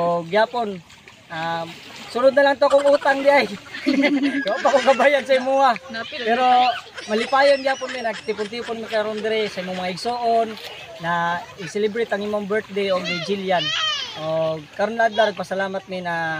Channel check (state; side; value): identical; both; correlation 1.00